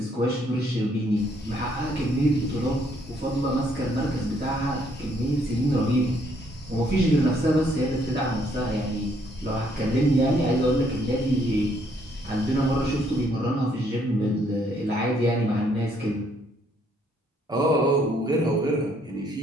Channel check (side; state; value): both; normal; correlation 0.68